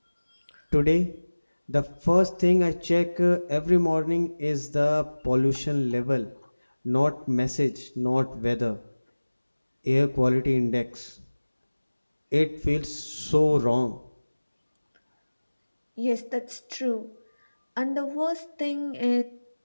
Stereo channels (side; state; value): both; inverted; correlation -1.00